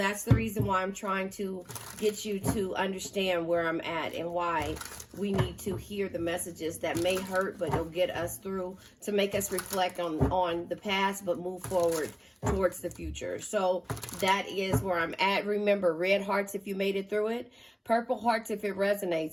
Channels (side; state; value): both; identical; correlation 1.00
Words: the reason why I'm trying to get you to understand where I'm at and why we need to hear the messages that may hurt, but it'll get us through to make us reflect on the past, but move forward towards the future. So that is where I'm at. Remember, red hearts if you made it through it, purple hearts if it